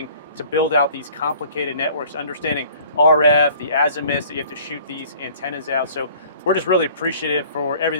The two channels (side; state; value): both; inverted; correlation -0.51